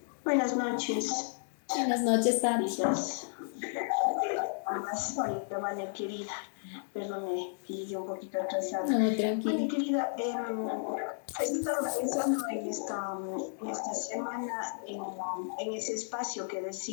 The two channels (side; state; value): right; silent; digital silence